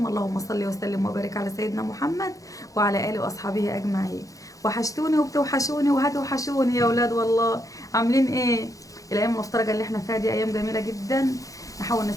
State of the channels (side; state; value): right; late; 0.16 ms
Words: اللهم صل وسلم وبارك على سيدنا محمد وعلى اله واصحابه اجمعين. وحشتوني وبتوحشوني وهتوحشوني يا ولاد والله. عاملين ايه؟ الايام المفترجه اللي احنا فيها دي ايام جميله جدا، نحاول